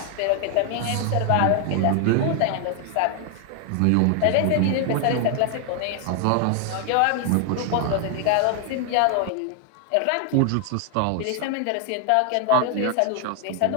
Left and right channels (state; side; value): different; both; correlation 0.00